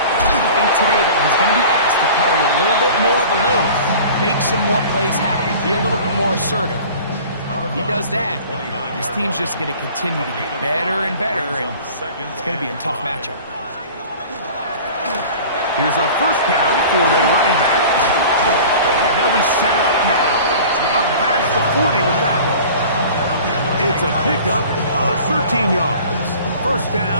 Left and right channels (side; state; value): both; inverted; correlation -0.43